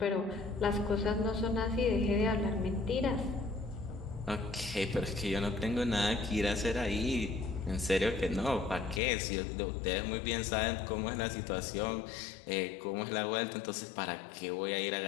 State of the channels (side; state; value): right; drops out; at 9.0 s